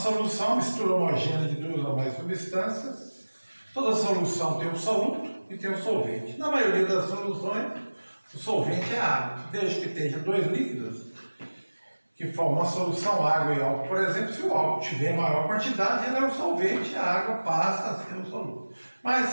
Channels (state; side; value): inverted; both; correlation -1.00